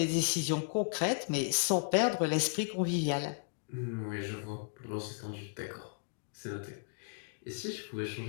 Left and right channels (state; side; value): silent; right; digital silence